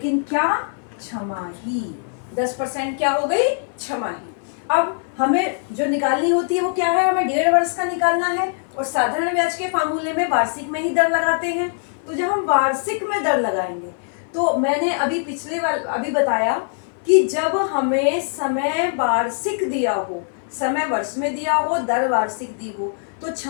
क्या? छमाही। 10% क्या हो गई? छमाही। अब हमें जो निकालनी होती है वो क्या है? हमें 1.5 वर्ष का निकालना है, और साधारण ब्याज के फार्मूले में वार्षिक में ही दर लगाते हैं। तो जब हम वार्षिक में दर लगाएंगे, तो मैंने अभी बताया कि जब हमें समय वार्षिक दिया हो, समय वर्ष में दिया हो, दर वार्षिक दी हो, तो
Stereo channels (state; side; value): silent; right; 61 dB below the other